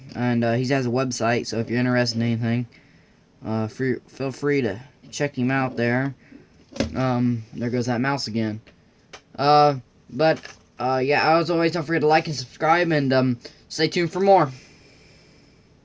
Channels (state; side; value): identical; both; correlation 1.00